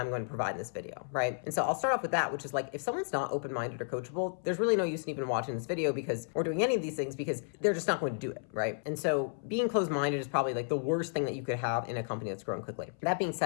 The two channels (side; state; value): right; silent; 56 dB below the other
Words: going to provide in this video, right? And so I'll start off with that, which is like, if someone's not open-minded or coachable, there's really no use in even watching this video or doing any of these things, because they're just not going to do it, right? And so being closed-minded is probably like the worst thing that you could have in a company that's growing quickly. That being